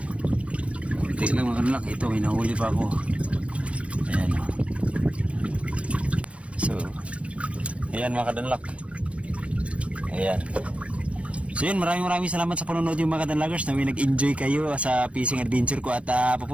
Kunti lang mga kanlak. Ito, may nahuli pa ako. Ayan. So, ayan mga kadanlak. Ayan. So yun, maraming salamat sa panonood yung mga kadanlagers na may nag-enjoy kayo sa fishing adventure ko at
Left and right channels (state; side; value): late; left; 0.062 ms